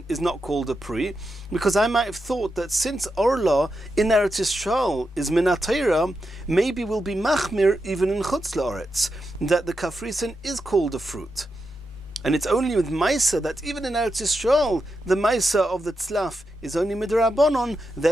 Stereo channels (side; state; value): both; normal; correlation 0.87